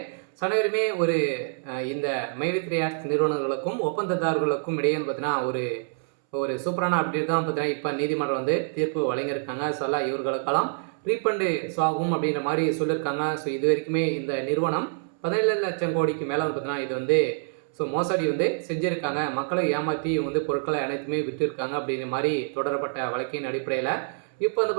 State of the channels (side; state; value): left; silent; 61 dB below the other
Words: அனைவருமே ஒரு இந்த மைவி3 ஆட்ஸ் நிறுவனங்களுக்கும் ஒப்பந்ததாரர்களுக்கும் இடையே வந்து பார்த்தீங்கன்னா ஒரு ஒரு சூப்பரான அப்டேட் தான் பார்த்தீங்கன்னா இப்போ நீதிமன்றம் வந்து தீர்ப்பு வழங்கியிருக்காங்க. இவர்களுக்கெல்லாம் ரீஃபண்டு ஆகும் அப்படின்ற மாதிரி சொல்லியிருக்காங்க. இது வரைக்குமே இந்த நிறுவனம் 17 லட்சம் கோடிக்கு மேலே வந்து பார்த்தீங்கன்னா இது வந்து மோசடி வந்து செஞ்சுருக்காங்க. மக்களை ஏமாற்றி இவங்க வந்து பொருட்களை அனைத்துமே விற்றுருக்காங்க அப்படின்ற மாதிரி தொடரப்பட்ட வழக்கின் அடிப்படையில் இப்போ வந்து